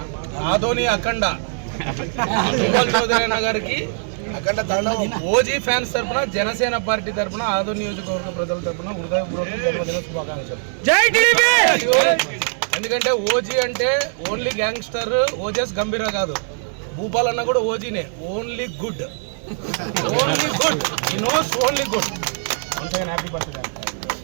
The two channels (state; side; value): silent; left; 65 dB below the other